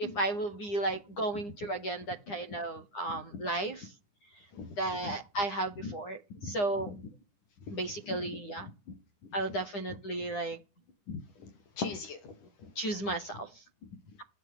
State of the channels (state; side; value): late; right; 9.9 ms